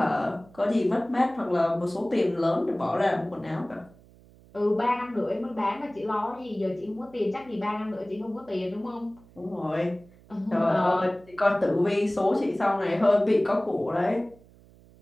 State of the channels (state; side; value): noise; right; hum, 25 dB below the sound